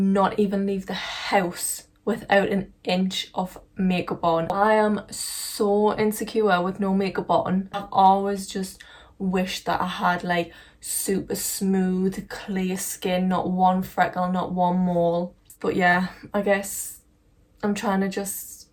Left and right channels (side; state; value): both; identical; correlation 1.00